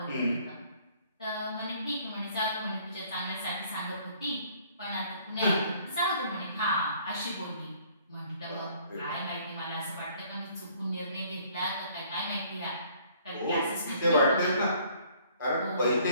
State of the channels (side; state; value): both; inverted; correlation -0.59